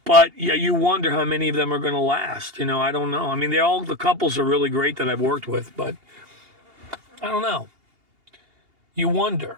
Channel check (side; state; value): left; late; 2.8 ms